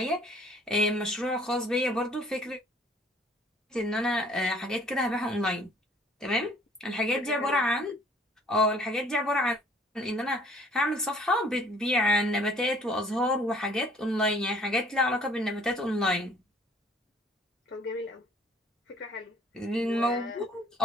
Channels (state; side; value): normal; both; correlation 0.57